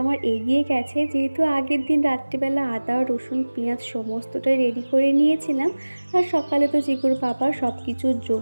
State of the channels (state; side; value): inverted; both; correlation -1.00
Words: আমার এগিয়ে গেছে, যেহেতু আগের দিন রাত্রিবেলা আদা রসুন পেঁয়াজ সমস্তটাই রেডি করে নিয়েছিলাম। আর সকালে তো চিকুর পাপা সব কিছু